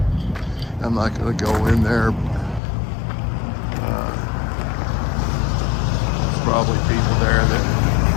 I'm not going to go in there. There's probably people there that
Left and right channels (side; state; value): right; drops out; at 2.6 s